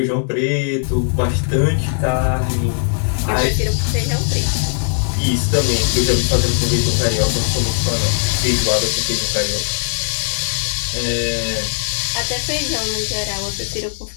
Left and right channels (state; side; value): silent; right; 61 dB below the other